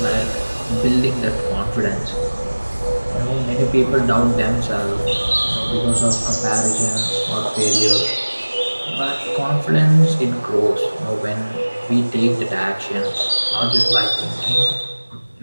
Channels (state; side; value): inverted; both; correlation -1.00